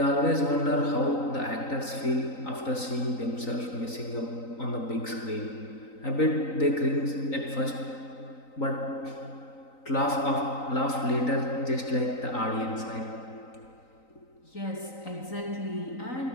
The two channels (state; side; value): late; right; 3.9 ms